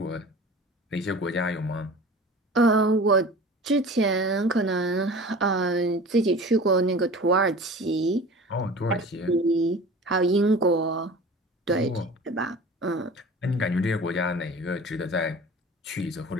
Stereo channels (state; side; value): normal; both; correlation 0.39